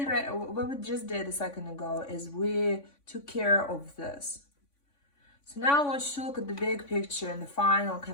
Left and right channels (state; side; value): late; right; 3.5 ms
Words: did a second ago is we took care of this. So now I want you to look at the big picture and the final